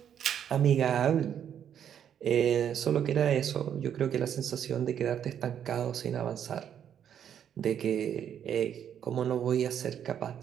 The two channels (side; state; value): left; quieter; 9.1 dB